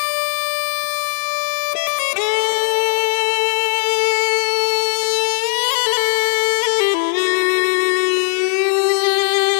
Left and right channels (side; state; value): right; silent; digital silence